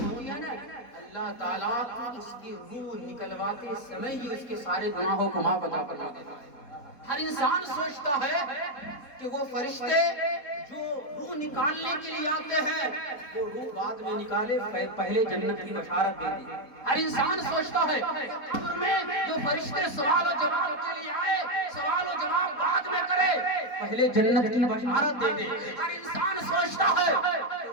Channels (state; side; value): late; right; 4.1 ms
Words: ہوتی ہے نا اللہ تعالیٰ اس کی روح نکلواتے سمے ہی اس کے سارے گناہوں کو معاف عطا فرما دیتا ہے. ہر انسان سوچتا ہے کہ وہ فرشتے جو روح نکالنے کے لیے آتے ہیں وہ روح بعد میں نکالے پہلے جنت کی بشارت دے دی. ہر انسان سوچتا ہے قبر میں جو فرشتے سوال و جواب کے لیے آئے سوال و جواب بعد میں کرے پہلے جنت کی بشارت دے دے. ہر انسان سوچتا ہے کہ